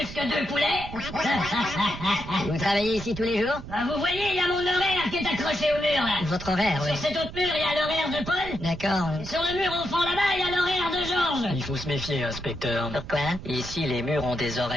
que 2 poulets. Vous travaillez ici tous les jours? Ah, vous voyez, il y a mon horaire qui est accroché au mur, là. Votre horaire, oui. Sur cet autre mur, il y a l'horaire de Paul. D'accord. Et sur le mur au fond là-bas, il y a l'horaire de Georges. Il faut se méfier, inspecteur. Pourquoi? Ici, les murs ont des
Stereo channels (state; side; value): noise; right; rumble, 12 dB below the sound